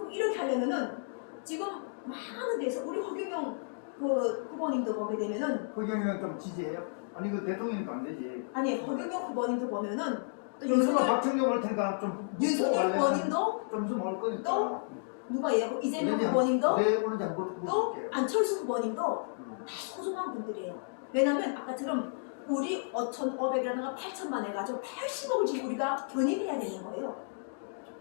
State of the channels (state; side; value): silent; right; digital silence